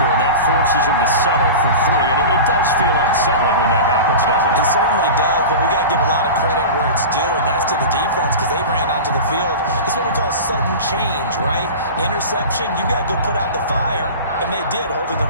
and that forces him to settle for 3. And it does feel like settling when that happens, doesn't it? It certainly does, but we got to give a lot of credit where it's due, and that's to the defense because they ran onto the field. This is what we call sudden change, right? Interception, you got to go put out the fire, and they did, holding them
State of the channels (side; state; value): both; inverted; correlation -0.31